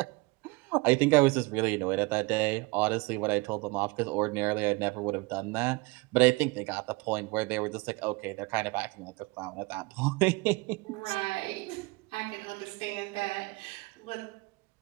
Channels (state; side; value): quieter; left; 25.6 dB